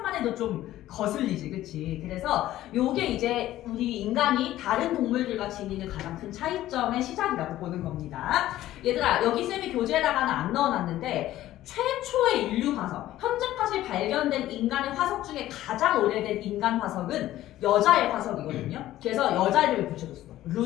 해도 좀 거슬리지, 그치? 그래서 요게 이제 우리 인간이 다른 동물들과 지니는 가장 큰 차이점의 시작이라고 보는 겁니다. 얘들아, 여기 쌤이 교재에다가는 안 넣어놨는데 최초의 인류 화석, 현재까지 발견된 인간의 화석 중에 가장 오래된 인간 화석은 여자의 화석이거든요. 그래서 여자 이름을 붙여줬어.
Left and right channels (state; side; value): quieter; right; 14.3 dB